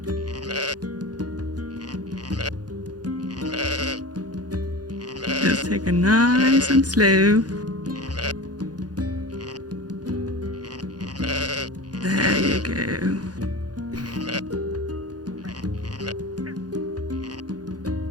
Just take it nice and slow. There you go.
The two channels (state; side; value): late; left; 0.69 ms